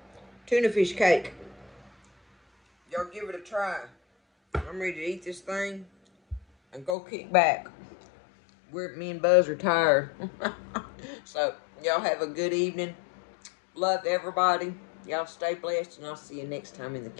tuna fish cake. Y'all give it a try. I'm ready to eat this thing and go kick back. Me and Buzz are tired. So y'all have a good evening. Love everybody. Y'all stay blessed, and I'll see you next time in the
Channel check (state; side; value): drops out; right; at 7.0 s